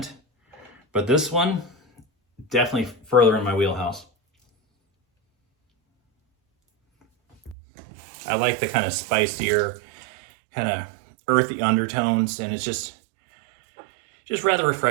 But this one, definitely further in my wheelhouse. I like the kind of spicier, kind of earthy undertones, and it's just rather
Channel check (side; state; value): left; drops out; at 7.6 s